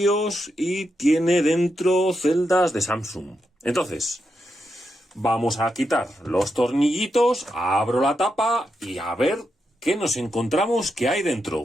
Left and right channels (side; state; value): both; normal; correlation 0.85